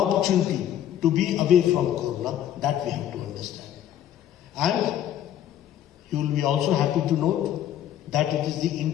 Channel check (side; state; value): right; quieter; 11.0 dB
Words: to be away from corona. That we have to understand. And you will be also happy to note that it is the